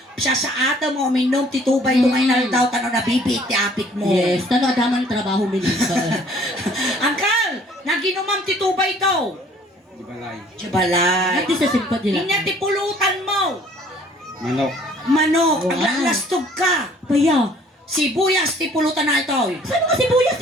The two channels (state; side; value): normal; both; correlation 0.57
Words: Siya sa ata mo, minom ti tubay to ngayon daw tano na bibit ti apit mo. Yes, tano adaman trabaho minisa. Angkal, naginomam ti tubay to. Di balay. Jabalay. Ati sa simpad nila. Inya ti pulutan mo. Manok. Manok, Wow. ang lalastog ka. Paya. Sibuyas ti pulutan na ito. Saan nga sibuyas